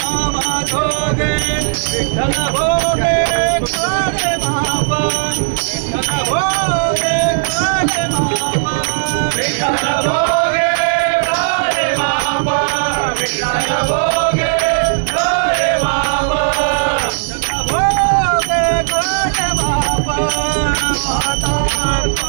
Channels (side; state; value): left; silent; digital silence